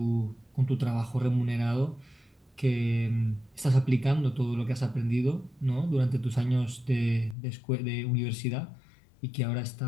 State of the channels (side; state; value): right; drops out; at 7.4 s